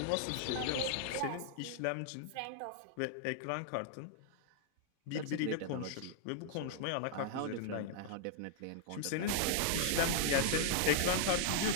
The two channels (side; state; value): both; different; correlation -0.01